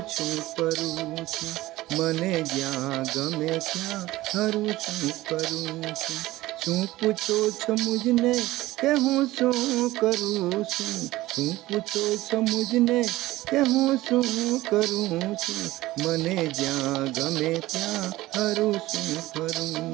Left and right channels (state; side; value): quieter; left; 17.4 dB